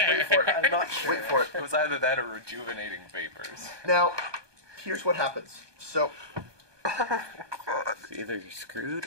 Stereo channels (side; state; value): left; late; 1.2 ms